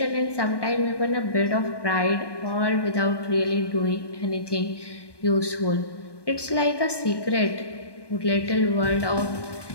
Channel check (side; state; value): right; late; 1.2 ms